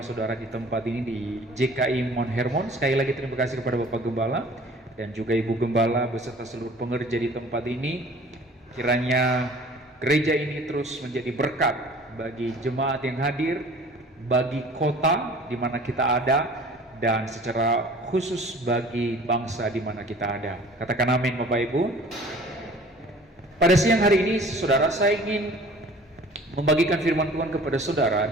saudara di tempat ini di JKI Mount Hermon. Sekali lagi terima kasih kepada Bapak Gembala dan juga Ibu Gembala beserta seluruh pengerja di tempat ini. Kiranya gereja ini terus menjadi berkat bagi jemaat yang hadir, bagi kota di mana kita ada, dan secara khusus bagi bangsa di mana kita ada. Katakan amin Bapak Ibu. Pada siang hari ini saudara, saya ingin membagikan firman Tuhan kepada saudara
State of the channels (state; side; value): normal; both; correlation 0.47